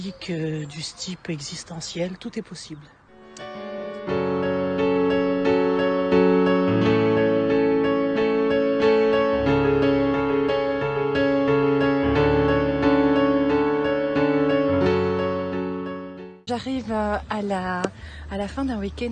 du type existentiel, tout est possible. J'arrive à la fin d'un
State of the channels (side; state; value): both; identical; correlation 1.00